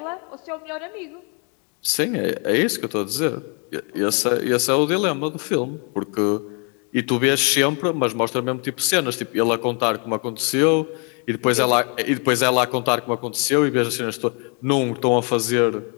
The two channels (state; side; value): quieter; right; 36.7 dB